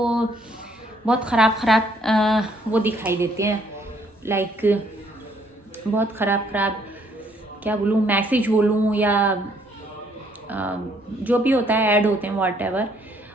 बहुत ख़राब वो दिखाई देते हैं। लाइक बहुत ख़राब क्या बोलूँ, मैसेज बोलूँ या जो भी होता है, ऐड होते हैं, व्हाटएवर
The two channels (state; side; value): normal; both; correlation 0.66